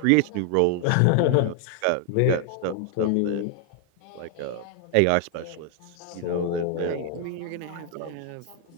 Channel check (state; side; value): different; both; correlation 0.00